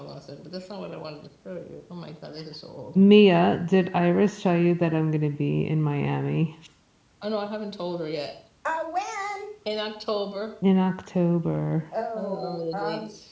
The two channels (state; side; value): identical; both; correlation 1.00